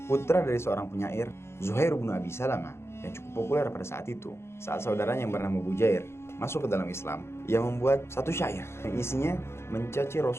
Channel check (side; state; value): right; late; 0.12 ms